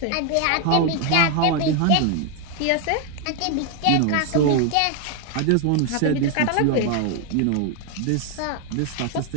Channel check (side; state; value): both; different; correlation 0.01